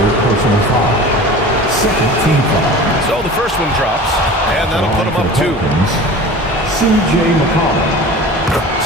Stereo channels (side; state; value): both; normal; correlation 0.38